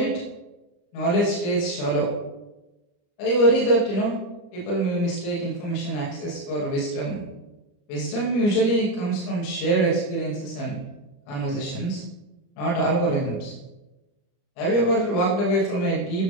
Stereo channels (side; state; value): right; late; 36 ms